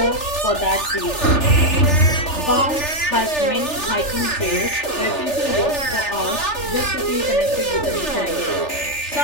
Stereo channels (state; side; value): late; right; 3.4 ms